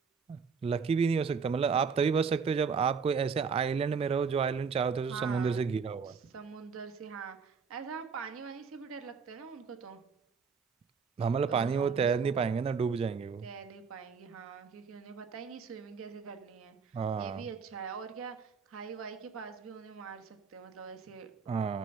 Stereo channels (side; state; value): left; quieter; 5.7 dB